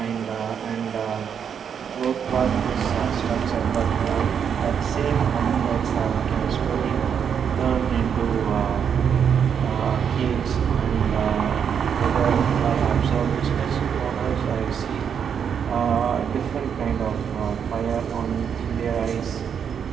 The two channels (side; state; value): left; quieter; 7.6 dB